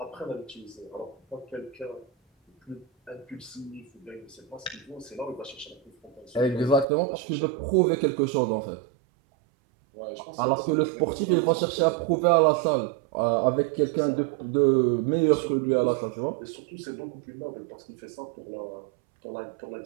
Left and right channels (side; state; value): left; drops out; at 6.9 s